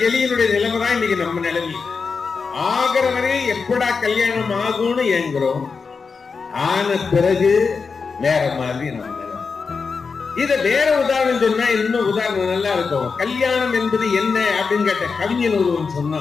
எலியினுடைய நிலைமை தான் இன்னைக்கு நம்ம நிலைமை. ஆகிற வரை எப்படா கல்யாணம் ஆகும்னு ஏங்குறோம். ஆன பிறகு வேற மாதிரி நம்ம நிலைமை. இத வேற உதாரணம் சொன்னா இன்னும் உதாரணம் நல்லா இருக்கும். கல்யாணம் என்பது என்ன அப்படின்னு கேட்ட கவிஞன் ஒருவன்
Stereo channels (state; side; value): quieter; right; 5.1 dB